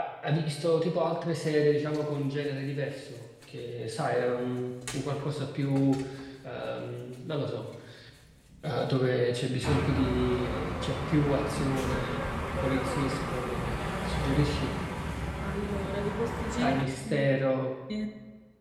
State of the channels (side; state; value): both; identical; correlation 1.00